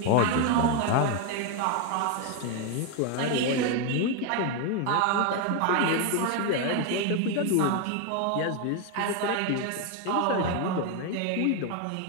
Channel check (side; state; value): both; different; correlation 0.01